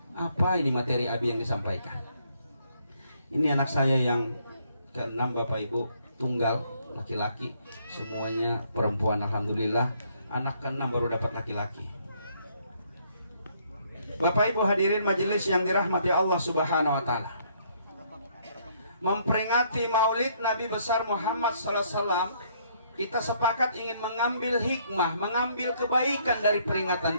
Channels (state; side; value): inverted; both; correlation -0.68